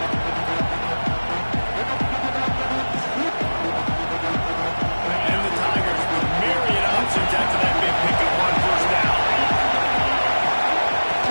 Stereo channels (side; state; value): both; inverted; correlation -1.00